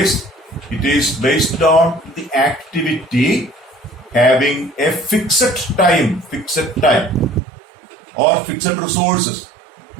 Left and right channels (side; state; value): left; drops out; at 7.4 s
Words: it is based on the activity having a fixed time or fixed resources,